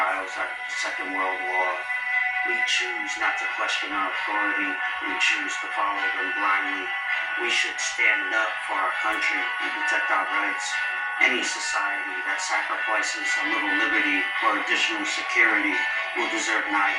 after the Second World War. We choose not to question our authority. We choose to follow them blindly. We should stand up for our country and protect our rights. Any society that sacrifices a little liberty for additional security will deserve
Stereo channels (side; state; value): both; identical; correlation 1.00